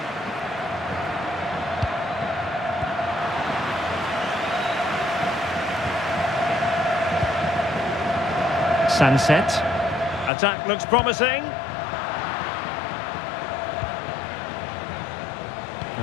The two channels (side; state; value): right; drops out; at 10.3 s